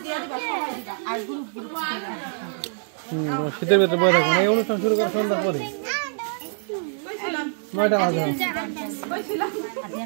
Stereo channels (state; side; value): silent; left; digital silence